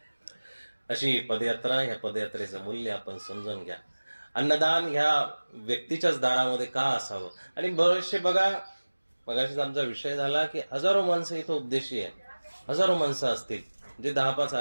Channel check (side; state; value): both; inverted; correlation -1.00